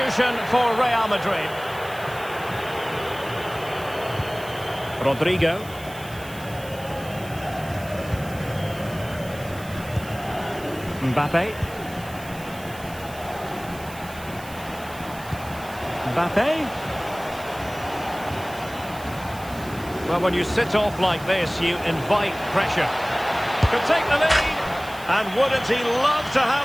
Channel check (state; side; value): noise; right; hiss, 18 dB below the sound